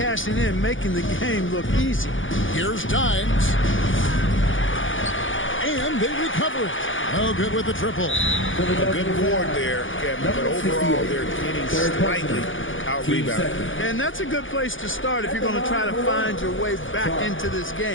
in, making the game look easy. Here's Dines. And they recover it. Oh, good with the triple. A good board there, Kevin, but overall they're getting slightly out-rebounded. And that's a good place to start if you're going to try to find your way back into this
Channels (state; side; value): late; right; 0.57 ms